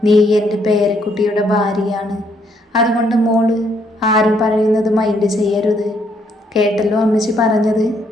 നീ എൻ്റെ പേരക്കുട്ടിയുടെ ഭാര്യയാണ്. അതുകൊണ്ട് മോള് ആരും പറയുന്നത് മൈൻഡ് ചെയ്യരുത്. കേട്ടല്ലോ അമ്മച്ചി പറഞ്ഞത്?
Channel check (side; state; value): both; normal; correlation 0.71